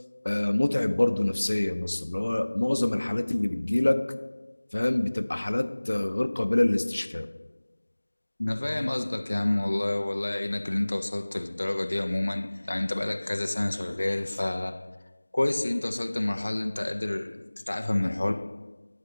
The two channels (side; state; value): both; inverted; correlation -1.00